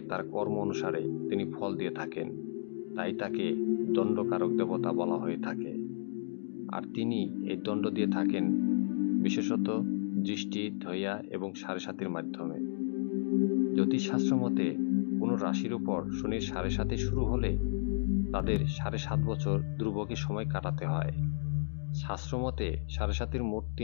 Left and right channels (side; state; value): right; silent; digital silence